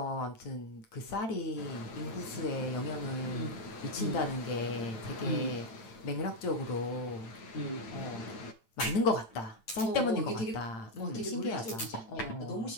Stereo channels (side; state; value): right; late; 9.0 ms